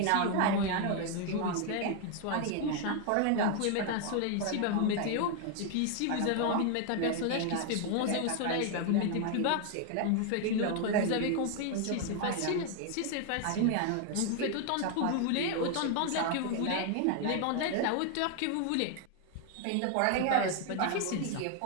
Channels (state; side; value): different; both; correlation 0.00